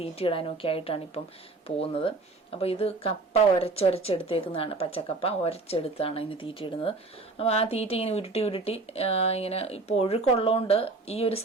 തീറ്റയിടാനും ഒക്കെ ആയിട്ടാണ് ഇപ്പം പോകുന്നത്. അപ്പോൾ ഇത് കപ്പ ഉരച്ചെടുത്തേക്കുന്നതാണ്. പച്ചക്കപ്പ ഉരച്ചെടുത്താണ് ഇതിന് തീറ്റയിടുന്നത്. അപ്പോൾ ആ തീറ്റ ഇങ്ങനെ ഉരുട്ടി ഇങ്ങനെ ഇപ്പോൾ ഒഴുക്കുള്ളതുകൊണ്ട് ഈ ഒരു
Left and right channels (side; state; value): left; quieter; 3.5 dB